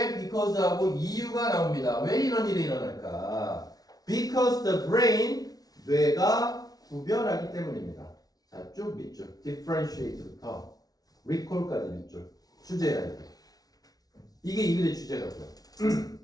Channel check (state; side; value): late; right; 0.18 ms